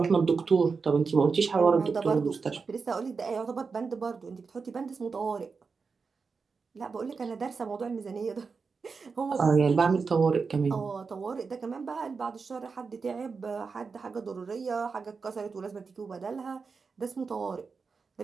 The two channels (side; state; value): left; quieter; 5.0 dB